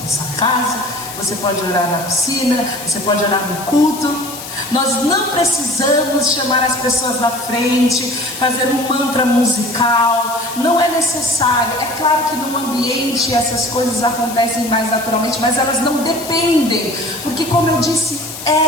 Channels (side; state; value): left; noise; hiss, 11 dB below the sound